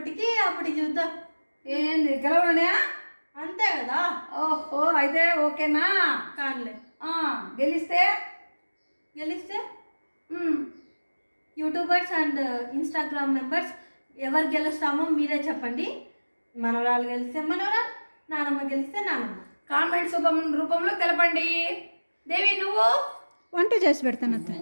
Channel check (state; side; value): inverted; both; correlation -1.00